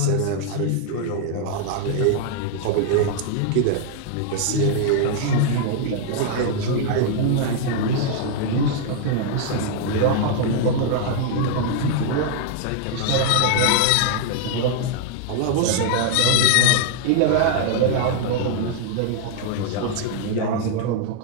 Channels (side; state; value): both; different; correlation -0.01